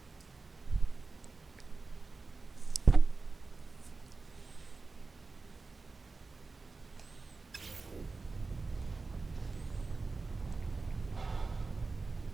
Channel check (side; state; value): left; quieter; 4.0 dB